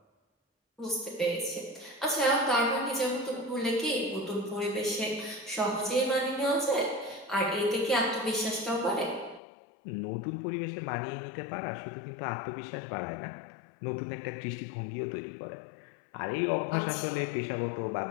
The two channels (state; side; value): drops out; right; at 9.4 s